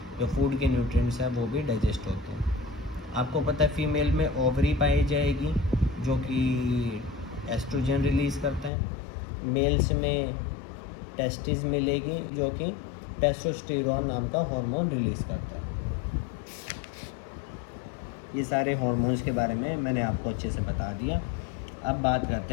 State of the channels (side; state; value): right; drops out; at 8.7 s